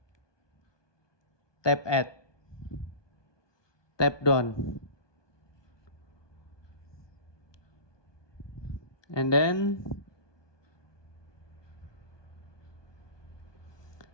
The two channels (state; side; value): late; right; 1.2 ms